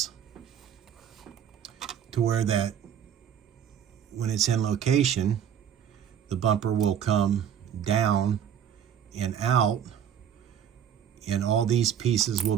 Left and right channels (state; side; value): quieter; left; 9.0 dB